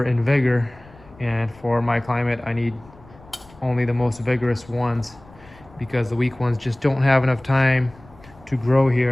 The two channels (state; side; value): noise; left; rumble, 24 dB below the sound